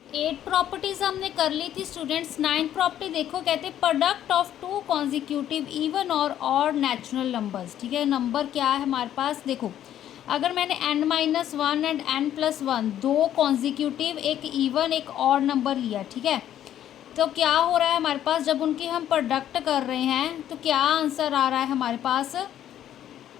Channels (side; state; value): right; quieter; 11.2 dB